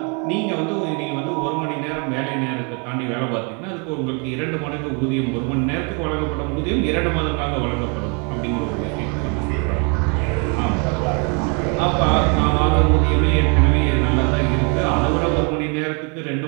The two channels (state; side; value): quieter; left; 35.2 dB